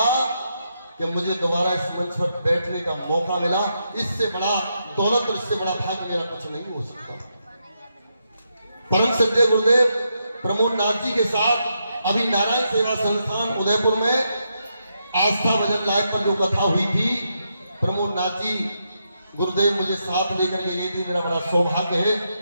कि मुझे दोबारा इस मंच पर बैठने का मौका मिला। इससे बड़ा दौलत और इससे बड़ा भाग्य मेरा कुछ नहीं हो सकता। परम श्रद्धेय गुरुदेव प्रमोद नाथ जी के साथ अभी नारायण सेवा संस्थान उदयपुर में आस्था भजन लाइव पर जो कथा हुई थी, प्रमोद नाथ जी गुरुदेव मुझे साथ लेकर के गई थी। मेरा बड़ा सौभाग्य है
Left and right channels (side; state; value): both; inverted; correlation -0.82